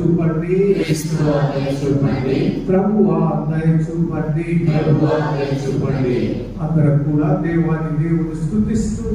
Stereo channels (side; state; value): both; identical; correlation 1.00